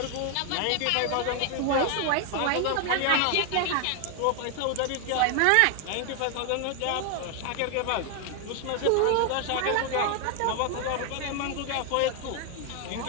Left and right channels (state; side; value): different; both; correlation 0.00